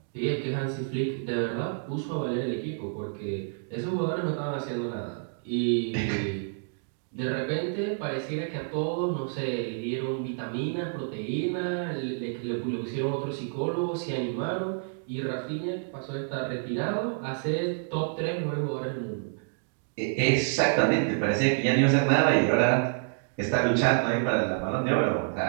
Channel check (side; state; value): left; silent; digital silence